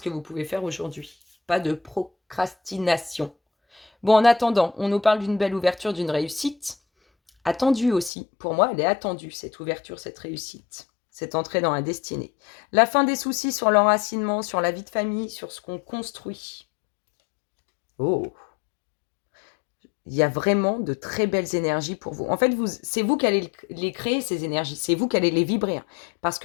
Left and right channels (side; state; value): right; drops out; at 8.1 s